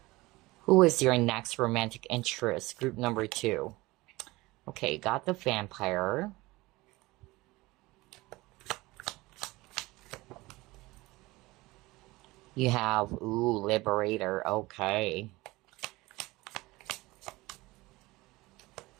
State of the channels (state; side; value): quieter; left; 20.8 dB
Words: Who is your next romantic interest? Group number 2. Okay, got the Vampire. You have, Liberator. Okay.